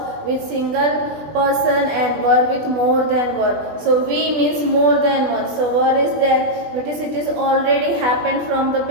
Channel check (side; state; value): left; late; 20 ms